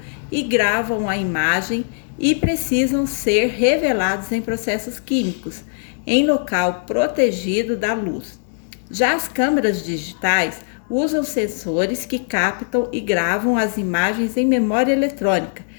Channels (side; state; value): right; silent; digital silence